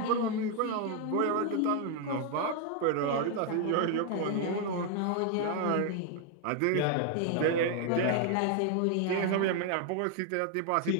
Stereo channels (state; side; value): different; both; correlation 0.00